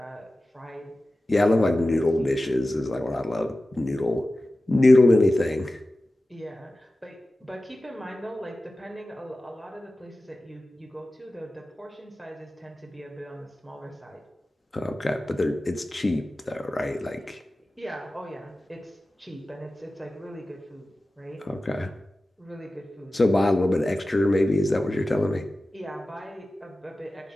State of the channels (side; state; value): both; normal; correlation 0.95